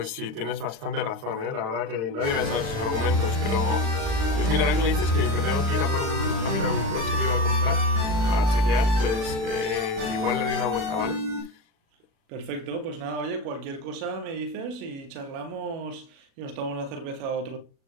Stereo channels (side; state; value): left; late; 36 ms